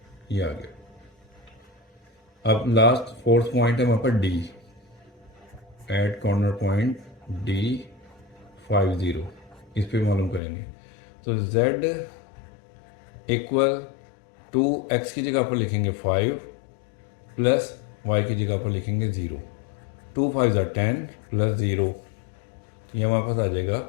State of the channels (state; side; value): drops out; right; at 10.4 s